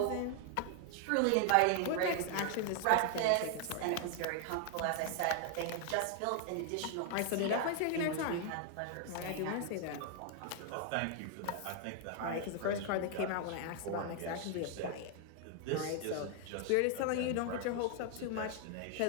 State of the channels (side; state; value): both; different; correlation 0.00